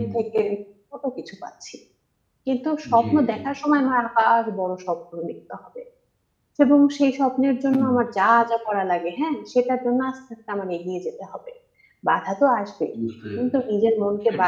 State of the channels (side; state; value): both; identical; correlation 1.00